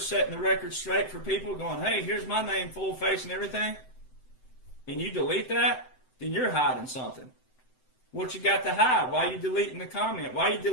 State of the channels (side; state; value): right; late; 7.8 ms